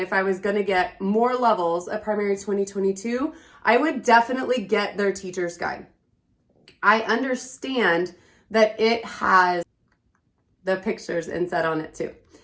I was going to get more levels at Primary 2022, I would definitely get their teacher's guide. I understand that it has the pictures inset on it too.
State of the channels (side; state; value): both; identical; correlation 1.00